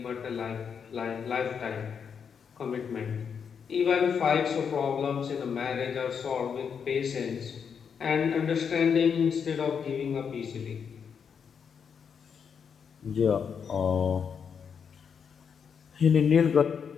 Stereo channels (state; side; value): quieter; right; 6.8 dB